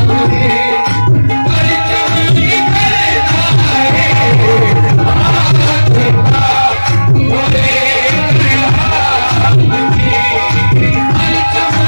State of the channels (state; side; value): inverted; both; correlation -1.00